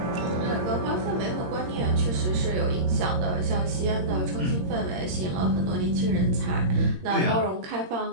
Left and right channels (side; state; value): left; late; 22 ms